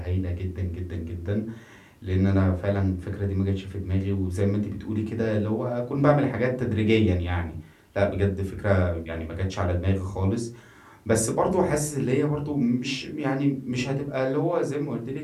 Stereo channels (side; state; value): both; identical; correlation 1.00